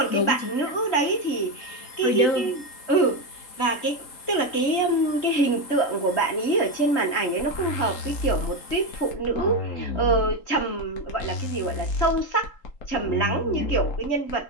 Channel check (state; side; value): late; right; 3.8 ms